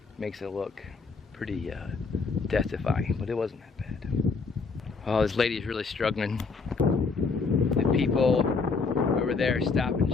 makes it look pretty death-defying, but it wasn't that bad. Oh, this lady is really struggling. The people over there stop and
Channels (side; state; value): right; quieter; 4.6 dB